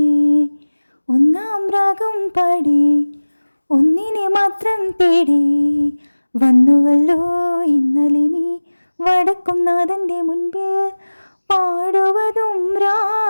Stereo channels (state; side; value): inverted; both; correlation -1.00